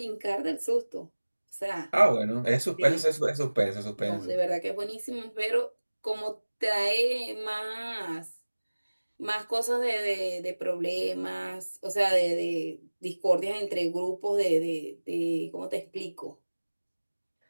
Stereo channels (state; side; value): inverted; both; correlation -1.00